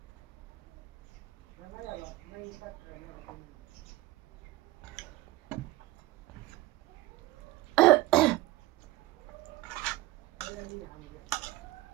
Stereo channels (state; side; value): quieter; left; 17.6 dB